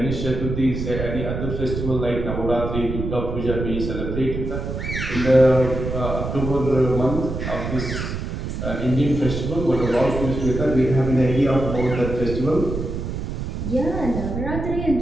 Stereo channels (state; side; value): noise; right; rumble, 4 dB below the sound